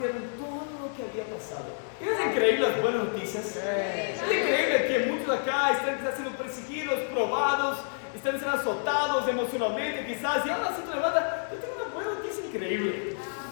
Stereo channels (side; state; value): right; silent; 59 dB below the other